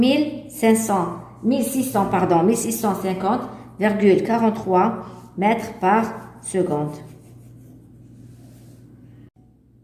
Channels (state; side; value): identical; both; correlation 1.00